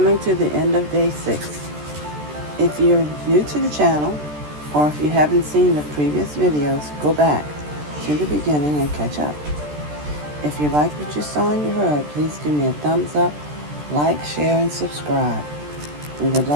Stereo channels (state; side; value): late; left; 13 ms